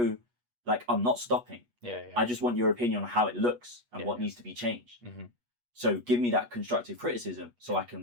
like, I'm not stopping. Yeah. I just want your opinion on how it looks and what needs to be changed. So give me that constructive criticism so I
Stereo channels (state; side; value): late; left; 8.3 ms